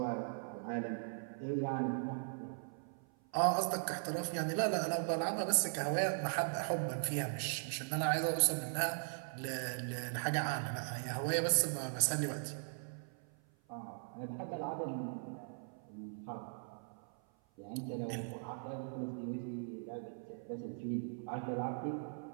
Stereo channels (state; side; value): silent; left; 52 dB below the other